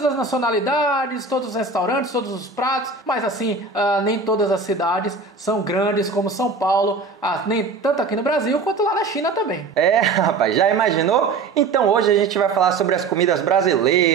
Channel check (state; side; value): quieter; left; 4.2 dB